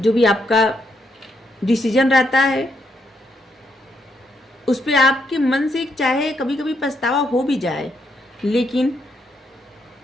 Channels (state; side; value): normal; both; correlation 0.78